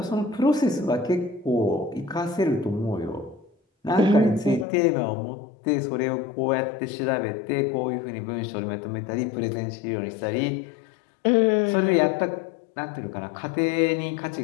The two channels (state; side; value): drops out; right; at 4.7 s